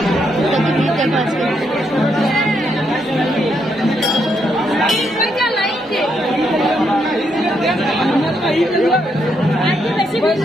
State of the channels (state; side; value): normal; both; correlation 0.77